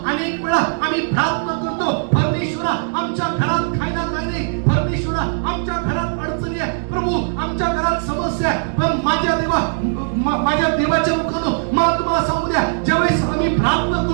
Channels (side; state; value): left; silent; digital silence